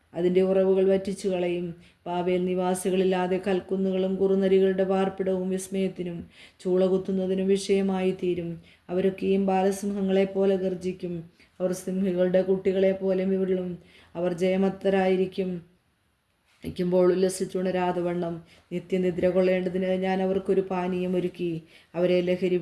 അതിൻ്റെ ഉറവുകൾ വറ്റിച്ചു കളയും. ബാബേൽ നിവാസികളില്ലാതെ കൽക്കുന്നുകളും കുറുനരികളുടെ പാർപ്പിടവും വിസ്മയത്തിനും ചൂള കുത്തുന്നതിനും വിഷയമായി തീരും. അവരൊക്കെയും ബാലസിംഹങ്ങളെപ്പോലെ ഗർജിക്കും. അവർ സിംഹികളുടെ കുട്ടികളെ പോലെ വിരളും. അവർ ജയമത്തരായിരിക്കുമ്പോൾ ഉല്ലസിച്ചുണരാതെ വണ്ണം നിത്യനിദ്ര കൊള്ളേണ്ടതിന് ഞാൻ അവർക്കൊരു പാനീയം ഒരുക്കി അവരെ ലഹരി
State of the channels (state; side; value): identical; both; correlation 1.00